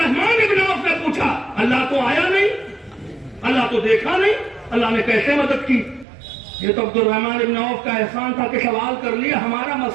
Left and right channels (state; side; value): drops out; left; at 6.1 s